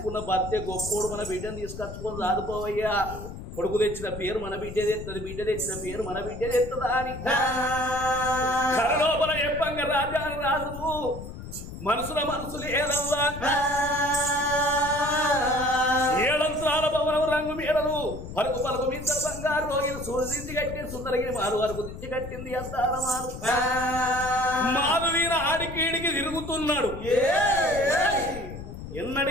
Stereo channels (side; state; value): left; noise; rumble, 10 dB below the sound